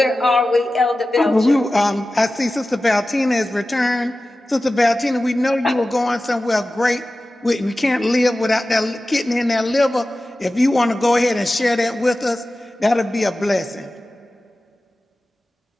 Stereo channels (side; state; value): both; normal; correlation 0.95